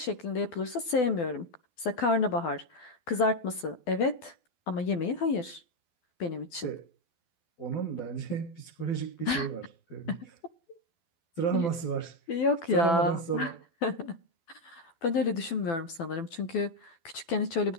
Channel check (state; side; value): late; right; 12 ms